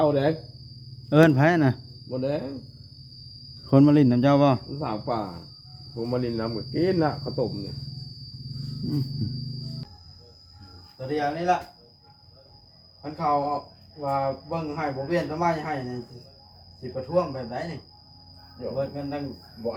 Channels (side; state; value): both; identical; correlation 1.00